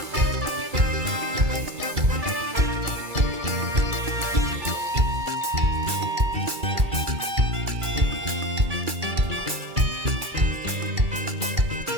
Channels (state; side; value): late; left; 2.3 ms